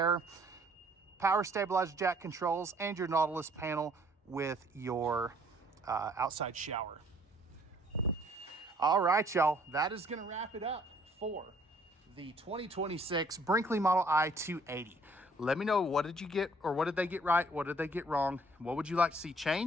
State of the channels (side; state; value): both; normal; correlation 0.60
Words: power stabilizer jack controls, and your Nautilus panel with your outside shower. All right, y'all, that is going to wrap it up for the 2026 Brinkley Model I 280. Let me know, what did you get, or what did they get right? What did they get wrong? What would you like to see